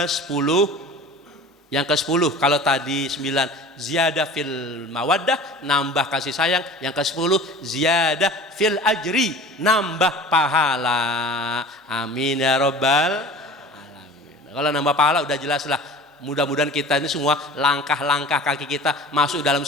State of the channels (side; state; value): both; normal; correlation 0.41